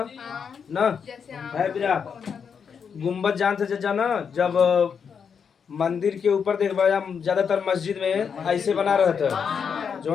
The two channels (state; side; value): quieter; right; 6.7 dB